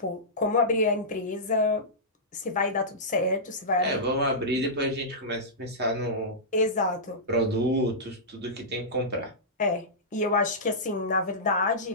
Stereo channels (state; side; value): normal; both; correlation -0.15